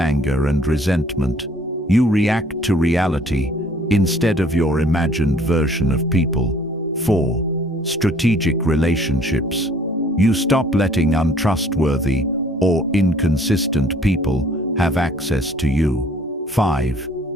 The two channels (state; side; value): normal; both; correlation 0.57